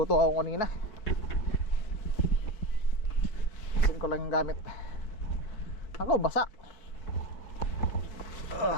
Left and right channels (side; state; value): right; late; 4.6 ms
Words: ako kanina. ko lang yung gamit. Ako, basa.